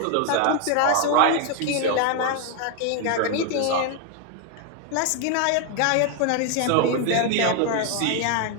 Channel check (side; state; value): both; different; correlation 0.00